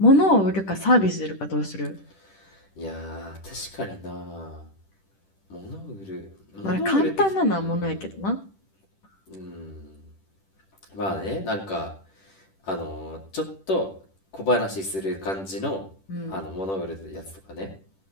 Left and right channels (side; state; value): right; late; 10 ms